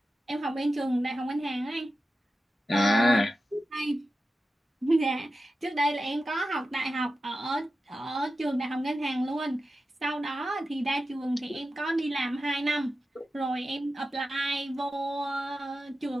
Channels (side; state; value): both; normal; correlation 0.92